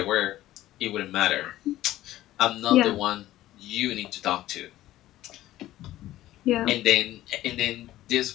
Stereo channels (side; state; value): right; quieter; 14.8 dB